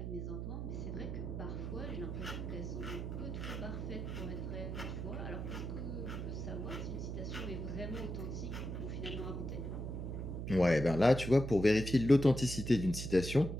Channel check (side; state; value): right; noise; hum, 5 dB below the sound